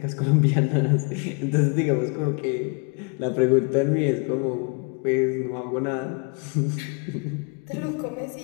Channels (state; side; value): quieter; right; 34.6 dB